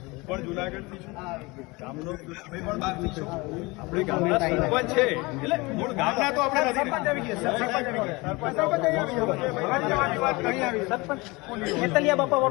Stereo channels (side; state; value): right; quieter; 24.5 dB